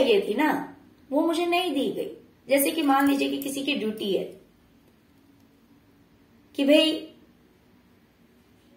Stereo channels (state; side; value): identical; both; correlation 1.00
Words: थी ना वो मुझे नहीं दी गई। जैसे कि मान लीजिए कि किसी की ड्यूटी है कि भाई